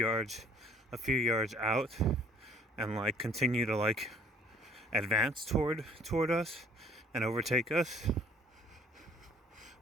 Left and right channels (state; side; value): normal; both; correlation 0.56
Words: out and like continue to like advance toward us and overtake us.